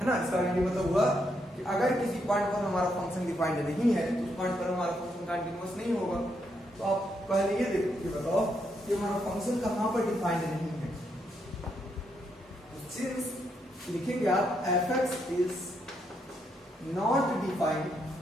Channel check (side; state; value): both; normal; correlation 0.78